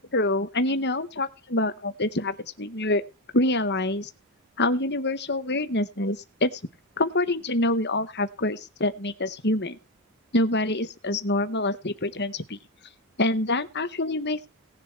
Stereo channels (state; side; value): normal; both; correlation 0.10